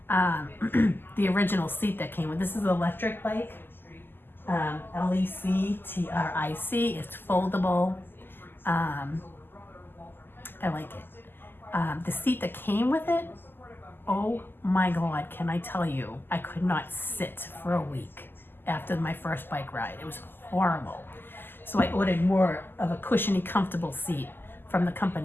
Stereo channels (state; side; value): late; right; 0.096 ms